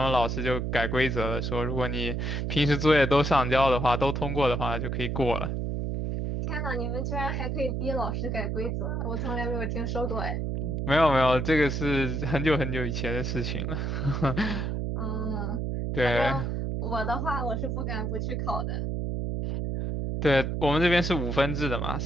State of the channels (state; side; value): noise; right; hum, 1 dB below the sound